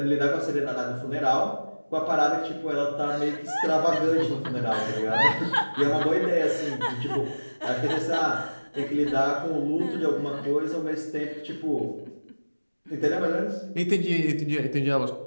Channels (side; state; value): both; inverted; correlation -1.00